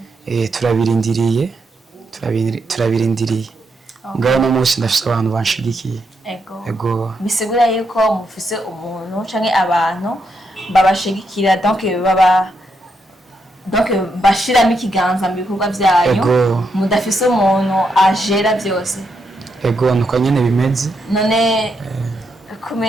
Turabirindiriye. Ngaho no munsi ndafise abantu banshigikiye. Ego. Bisigura yuko mufise umuntu canke abantu babashigikira donc bashiramo ikiganza mu bikorwa byanyu mudafise umuntu ajera byose. Ego nuko nyene bimeze. None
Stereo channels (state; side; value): normal; both; correlation 0.80